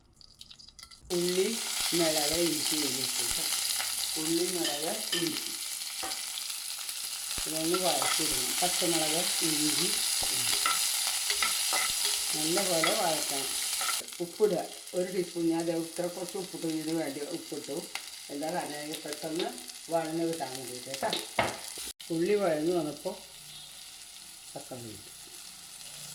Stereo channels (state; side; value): identical; both; correlation 1.00